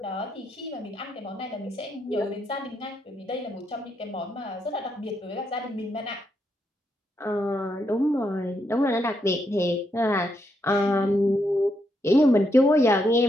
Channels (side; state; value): both; normal; correlation 0.79